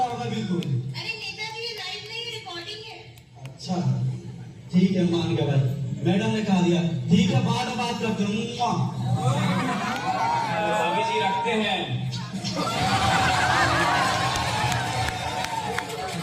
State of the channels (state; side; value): identical; both; correlation 1.00